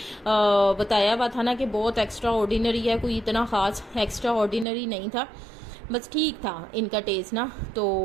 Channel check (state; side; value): drops out; left; at 4.7 s